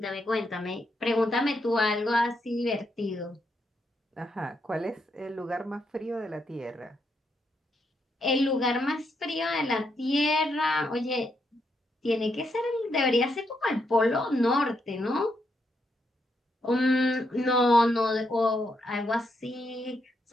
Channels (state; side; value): normal; both; correlation 0.79